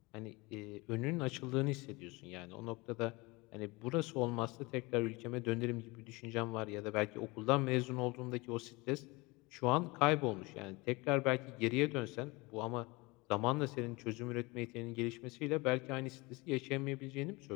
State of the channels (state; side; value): quieter; right; 24.5 dB